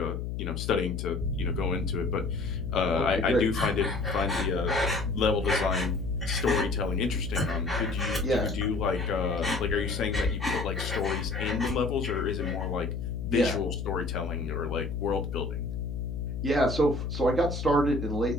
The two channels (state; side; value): noise; left; hum, 4 dB below the sound